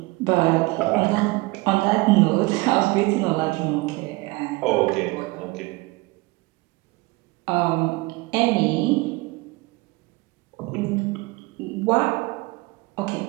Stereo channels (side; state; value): left; quieter; 23.1 dB